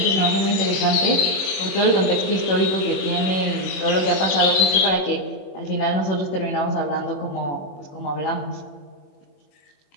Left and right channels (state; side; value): late; right; 21 ms